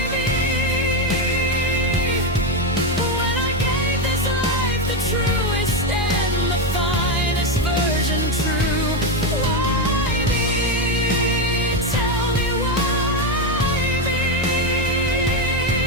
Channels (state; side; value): normal; both; correlation 0.09